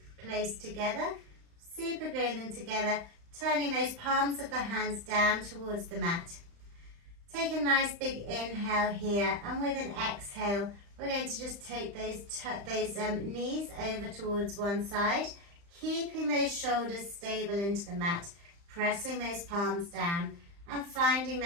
close together, super gluing them together, turning those palms of the hands down towards the mat. Take a nice big inhale here, and with an exhale, we're going to just take those knees over towards one side, keeping those shoulders stable into the mat, pressing those palms down and finding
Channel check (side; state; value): left; late; 35 ms